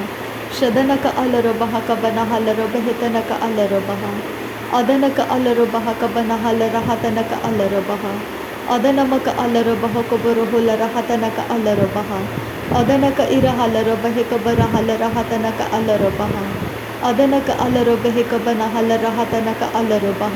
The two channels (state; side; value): identical; both; correlation 1.00